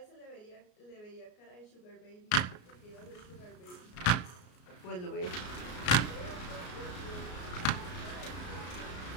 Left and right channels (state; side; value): late; right; 33 ms